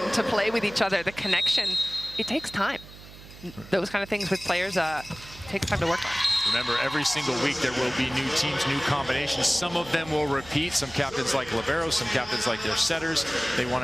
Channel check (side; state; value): right; noise; hum, 18 dB below the sound